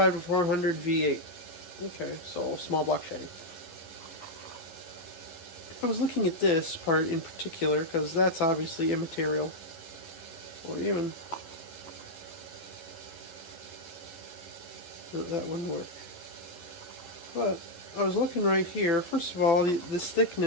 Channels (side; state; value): right; late; 11 ms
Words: to 400 V8. Okay, so small block Chevy. I was looking at this part in particular because that's obviously immaterial. Or even that wouldn't work. But I was looking right here. First of all, this